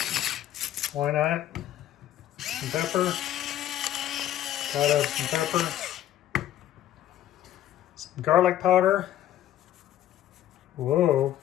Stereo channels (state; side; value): quieter; right; 12.4 dB